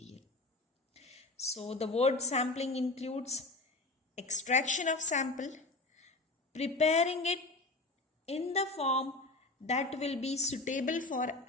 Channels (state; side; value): quieter; right; 3.1 dB